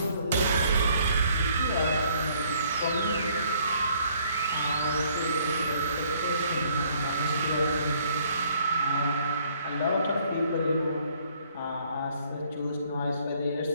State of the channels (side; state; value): both; inverted; correlation -0.63